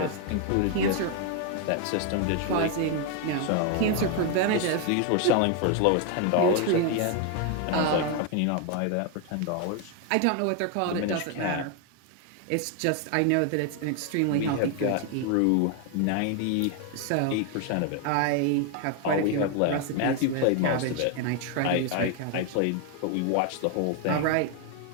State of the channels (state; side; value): different; both; correlation 0.01